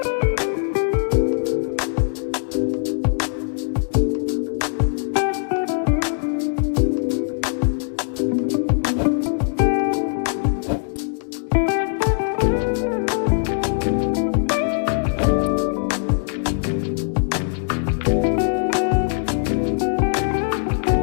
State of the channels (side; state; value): right; silent; 65 dB below the other